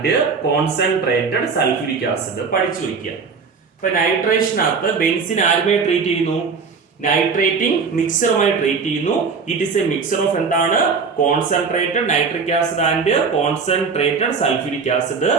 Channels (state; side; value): quieter; left; 5.2 dB